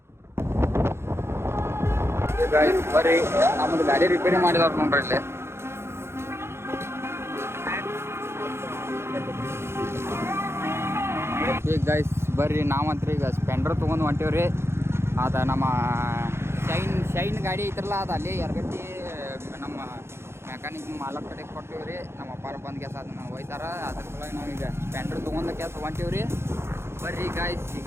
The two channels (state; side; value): late; left; 0.12 ms